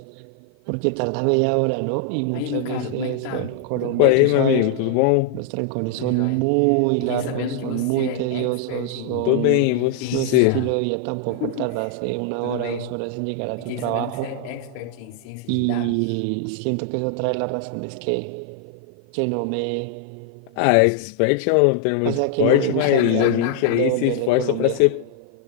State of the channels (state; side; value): different; both; correlation 0.00